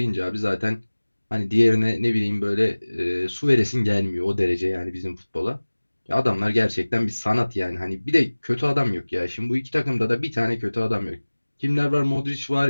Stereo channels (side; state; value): both; inverted; correlation -1.00